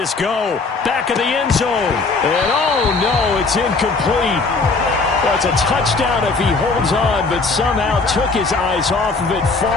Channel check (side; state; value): right; quieter; 4.0 dB